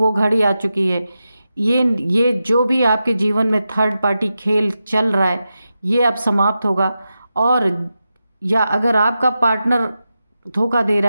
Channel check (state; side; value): inverted; both; correlation -0.90